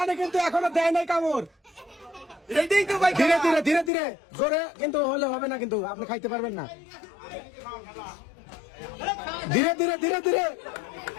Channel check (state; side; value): drops out; right; at 3.9 s